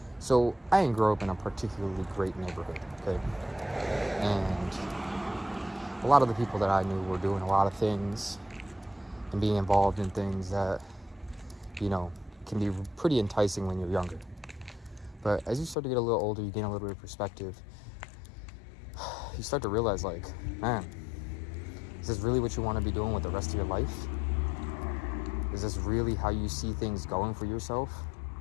So I didn't grow up in a particularly great neighborhood, okay? And a lot of the people that I knew were doing a lot of things and being involved in things that, you know, can be pretty enticing when you're younger. But as you start to get a little older, you gain a little bit of perspective. You start to realize, like, man, is this really what you want to be doing with the rest of your life? Is this really how you see things going for yourself?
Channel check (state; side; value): drops out; right; at 15.8 s